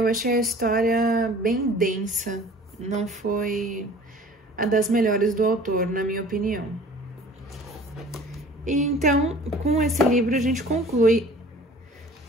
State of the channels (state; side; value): normal; both; correlation 0.47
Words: achei a história bem densa, não foi a das melhores do autor, na minha opinião. E então, com esse livro, a gente conclui